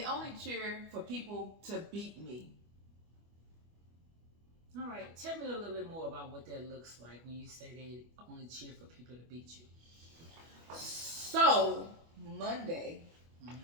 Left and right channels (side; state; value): left; late; 25 ms